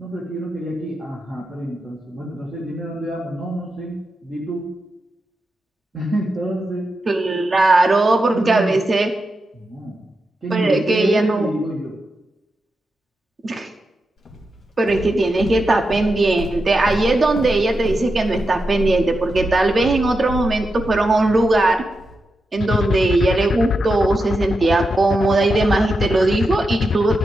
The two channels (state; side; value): normal; both; correlation 0.88